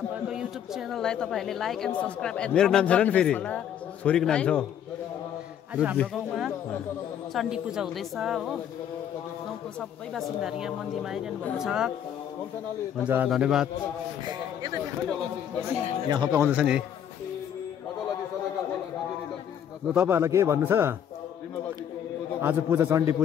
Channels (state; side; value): quieter; right; 9.4 dB